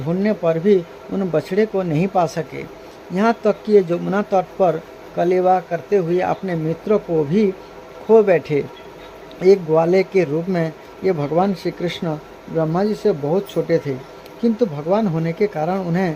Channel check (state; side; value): identical; both; correlation 1.00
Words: पर भी उन बछड़े को नहीं पा सके। यहाँ तक कि यमुना तट पर कलेवा करते हुए अपने मित्रों को भी खो बैठे। एक ग्वाले के रूप में ये भगवान श्री कृष्ण ब्रह्मा जी से बहुत छोटे थे, किंतु भगवान होने के कारण